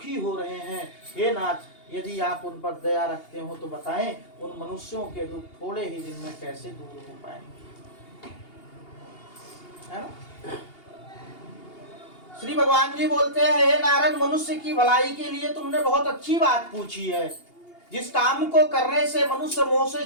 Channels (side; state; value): right; late; 2.8 ms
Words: हो रहे हैं। हे नाथ, यदि आप उन पर दया रखते हो तो बताएं, उन मनुष्यों के दुख थोड़े ही दिन में कैसे दूर हो पाएंगे, है ना। श्री भगवान जी बोलते हैं, हे नारद, मनुष्य की भलाई के लिए तुमने बहुत अच्छी बात पूछी है। जिस काम को करने से मनुष्य मोह से